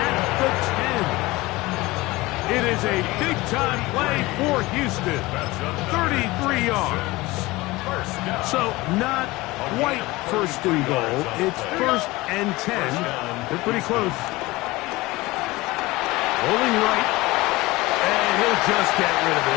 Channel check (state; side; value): quieter; right; 20.6 dB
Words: the 10. It is a big-time play for Houston. 33 yards. So not quite first and goal. It's first and 10. They're pretty close. Rolling right. And he'll just get rid of